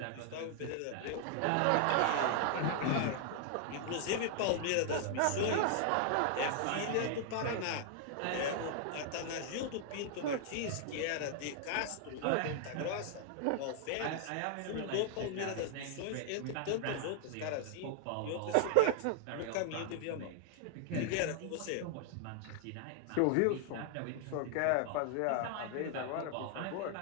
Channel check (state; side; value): different; both; correlation 0.00